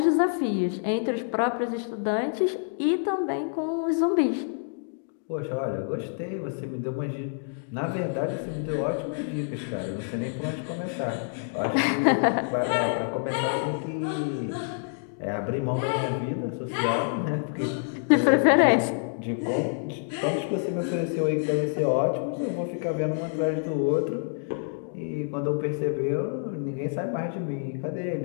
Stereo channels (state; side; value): silent; right; digital silence